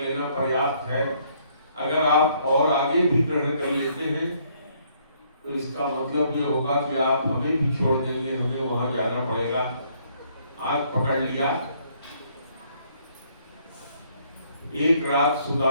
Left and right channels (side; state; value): both; inverted; correlation -0.67